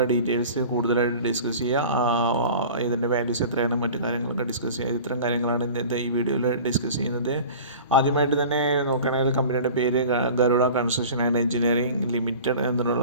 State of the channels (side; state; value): both; inverted; correlation -0.39